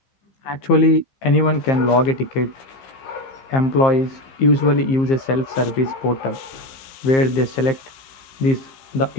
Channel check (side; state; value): right; late; 15 ms